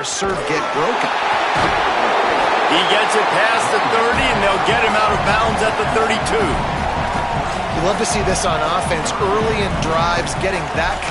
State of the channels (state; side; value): identical; both; correlation 1.00